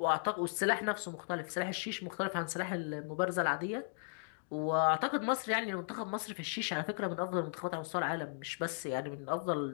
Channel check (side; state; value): right; silent; digital silence